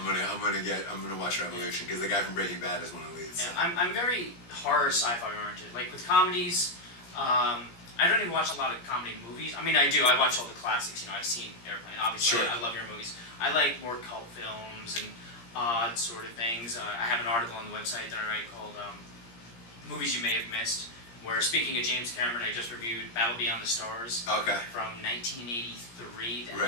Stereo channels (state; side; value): late; right; 17 ms